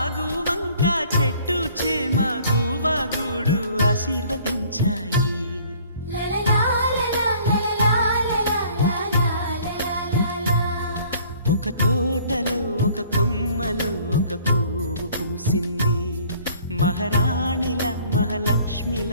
వంక చెట్టు చేమ గువగుడు ఆశీర్వదించాయి. ఒక తోటలో ఒక కొమ్మలో ఒక పువ్వు పూసింది. మహారాణిల మహాలక్ష్మిల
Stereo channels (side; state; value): both; inverted; correlation -0.55